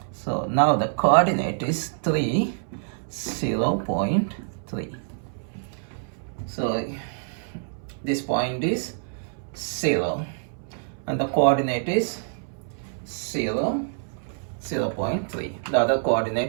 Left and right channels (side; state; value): left; silent; 61 dB below the other